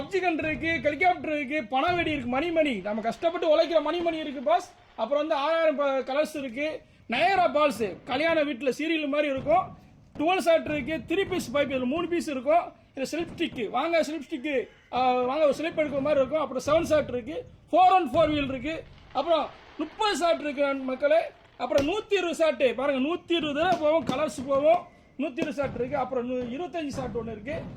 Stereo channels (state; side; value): identical; both; correlation 1.00